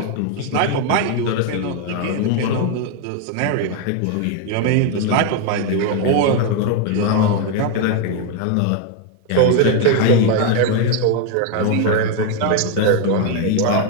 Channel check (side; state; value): both; different; correlation 0.01